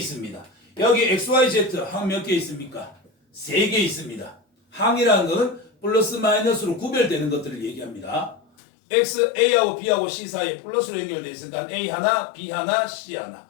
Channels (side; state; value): right; drops out; at 8.4 s